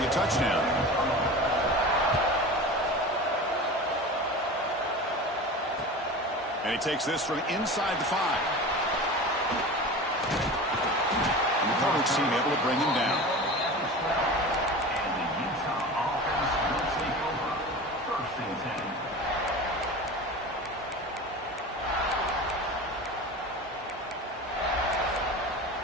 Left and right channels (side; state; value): both; normal; correlation 0.33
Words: a touchdown. And he takes this from inside the 5. And the coverage team able to bring him down.